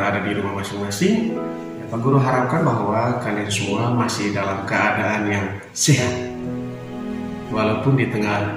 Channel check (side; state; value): both; identical; correlation 1.00